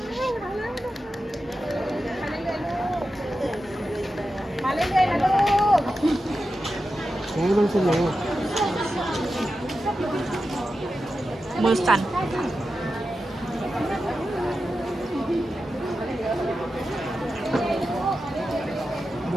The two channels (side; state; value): both; normal; correlation 0.91